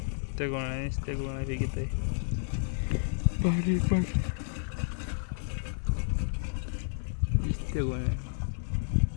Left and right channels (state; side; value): silent; right; digital silence